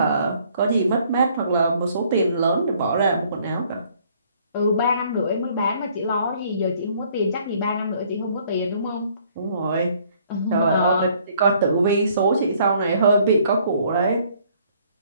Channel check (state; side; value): inverted; both; correlation -0.62